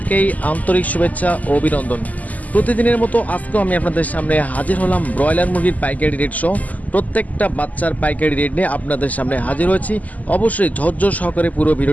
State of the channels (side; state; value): right; late; 0.077 ms